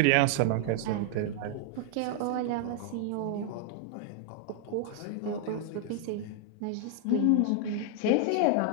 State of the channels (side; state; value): both; different; correlation 0.00